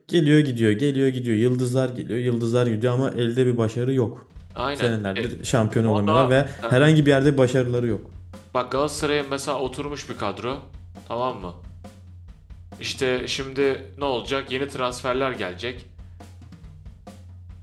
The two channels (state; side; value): identical; both; correlation 1.00